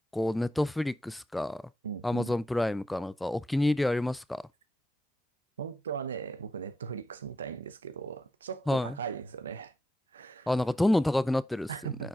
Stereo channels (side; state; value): both; normal; correlation 0.85